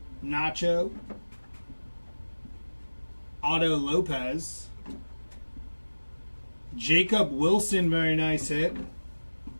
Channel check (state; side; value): inverted; both; correlation -1.00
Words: Nacho. Otto Lopez. Jacob Wilson, very nice hit.